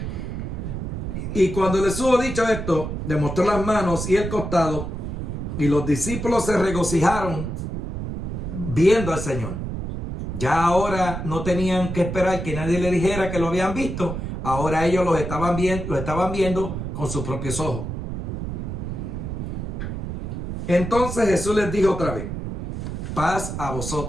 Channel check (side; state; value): right; noise; rumble, 5 dB below the sound